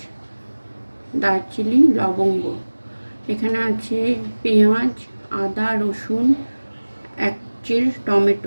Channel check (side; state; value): both; inverted; correlation -1.00